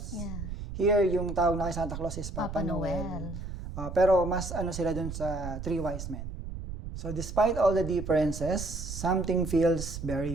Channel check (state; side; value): noise; right; rumble, 8 dB below the sound